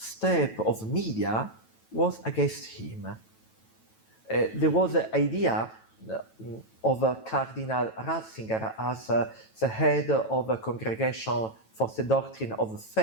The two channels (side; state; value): right; late; 9.1 ms